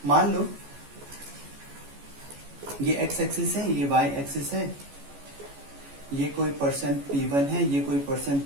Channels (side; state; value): left; late; 14 ms